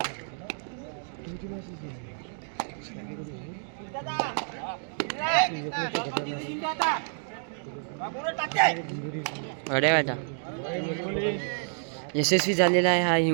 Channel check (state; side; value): silent; left; 59 dB below the other